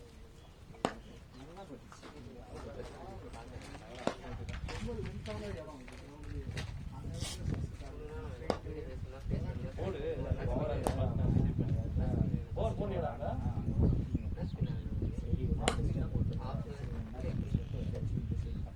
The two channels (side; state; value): both; identical; correlation 1.00